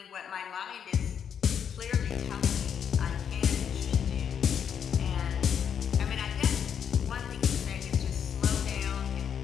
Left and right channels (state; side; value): quieter; right; 8.0 dB